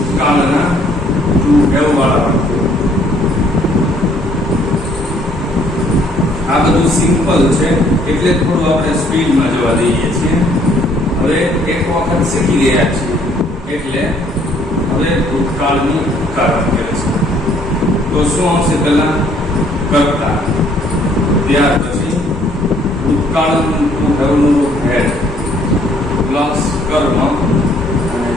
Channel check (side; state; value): both; normal; correlation 0.63